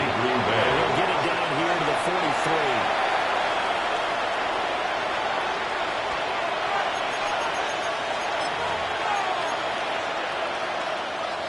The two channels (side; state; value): both; identical; correlation 1.00